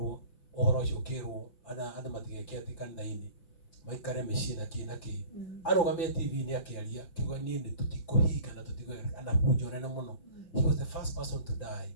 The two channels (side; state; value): right; late; 5.7 ms